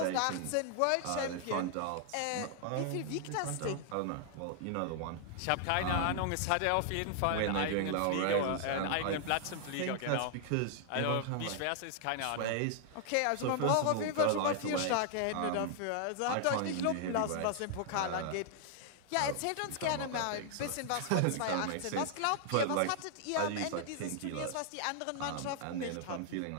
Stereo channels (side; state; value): both; different; correlation 0.00